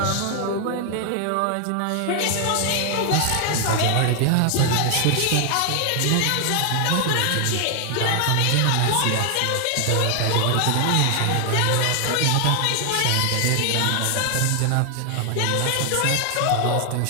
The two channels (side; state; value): both; different; correlation 0.00